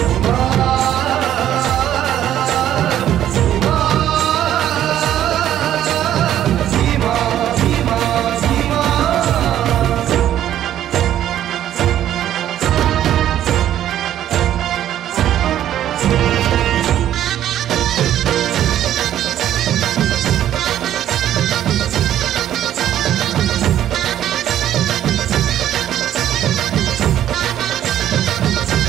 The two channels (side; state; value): left; quieter; 11.6 dB